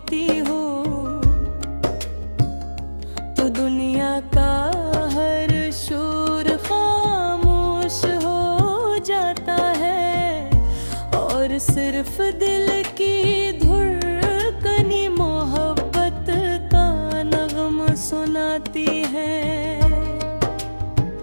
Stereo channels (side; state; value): both; inverted; correlation -1.00